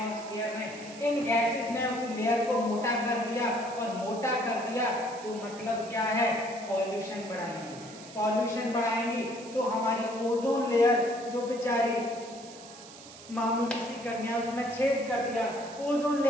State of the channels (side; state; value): right; noise; hiss, 17 dB below the sound